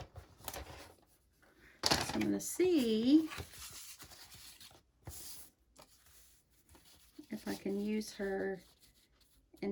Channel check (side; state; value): both; identical; correlation 1.00